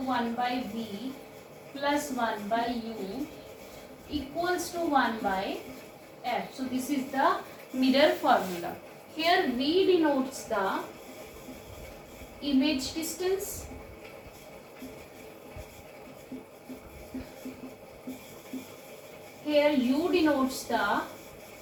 by V plus 1 by U equals to 1 by F. So this is the mirror formula. Here V denotes the image distance. Here U denotes the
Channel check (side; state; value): both; identical; correlation 1.00